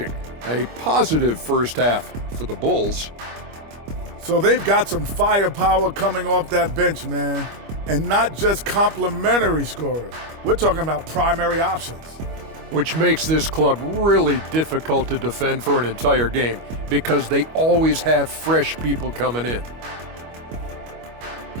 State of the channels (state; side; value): late; left; 25 ms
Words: A positive first half for the Bulls. So they've got some firepower coming off that bench, man. And not just complimentary scorers. We're talking about primary options. Which makes this club really difficult to defend for an entire game because they always have fresh people coming in.